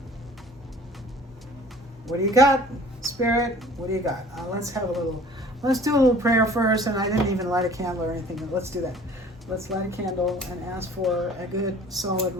What do you got, Spirit? What do you got? Let's do a little prayer first, and I didn't even light a candle or anything, but let's do that. Let's light a candle and ask for a good, solid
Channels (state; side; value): normal; both; correlation 0.49